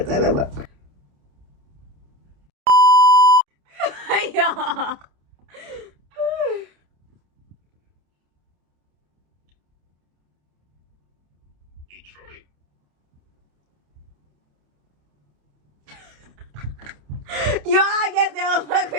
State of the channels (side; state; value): left; late; 28 ms